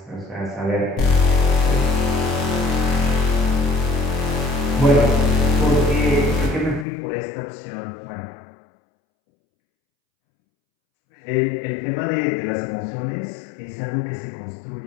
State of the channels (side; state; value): right; drops out; at 6.9 s